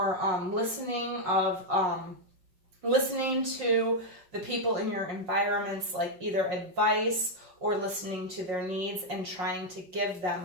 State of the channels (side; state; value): left; late; 5.5 ms